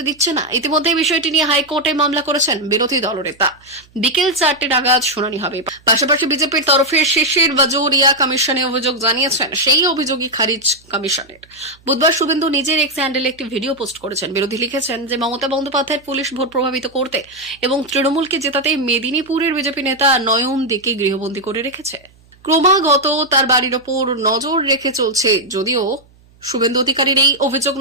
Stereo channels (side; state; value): right; noise; hum, 30 dB below the sound